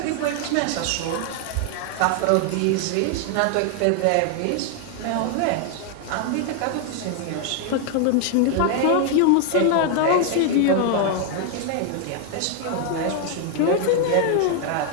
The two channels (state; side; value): different; both; correlation 0.00